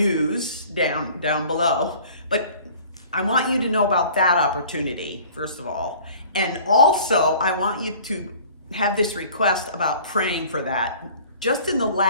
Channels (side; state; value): both; inverted; correlation -0.48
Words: down below, but I want you to know about that opportunity, first of all. And also, I want you to have this request about praying for that. Just in the